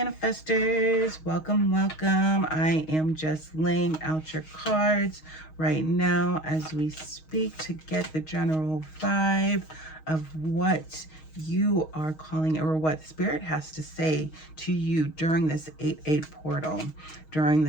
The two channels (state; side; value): late; right; 6.4 ms